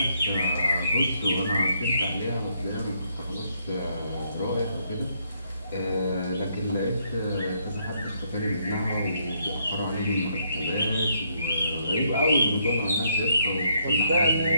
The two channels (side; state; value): both; inverted; correlation -0.73